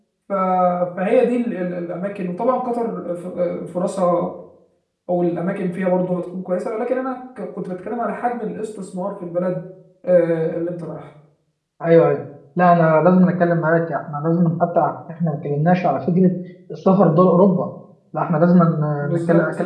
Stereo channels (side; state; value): both; identical; correlation 1.00